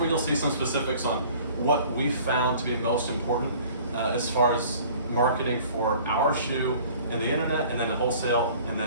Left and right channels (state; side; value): inverted; both; correlation -0.50